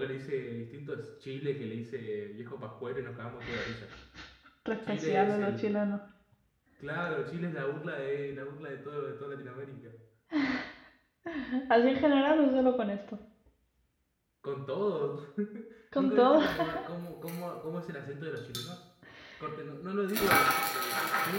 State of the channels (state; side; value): identical; both; correlation 1.00